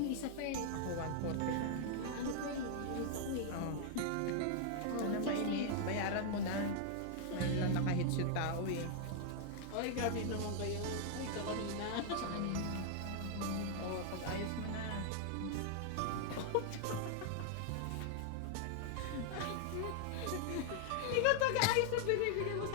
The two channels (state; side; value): different; both; correlation 0.00